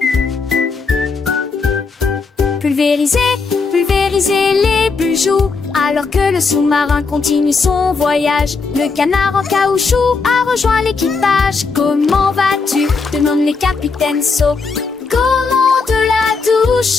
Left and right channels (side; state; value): right; quieter; 4.5 dB